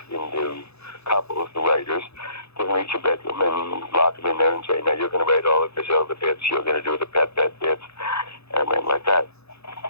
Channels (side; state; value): right; late; 0.79 ms